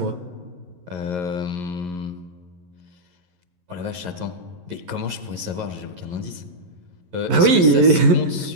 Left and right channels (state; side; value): late; left; 11 ms